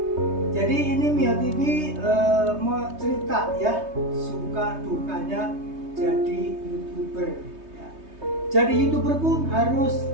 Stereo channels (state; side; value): late; left; 3.2 ms